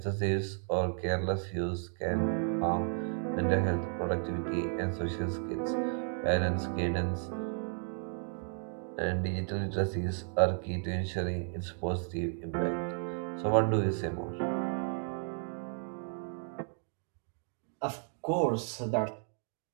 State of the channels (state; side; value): silent; left; 55 dB below the other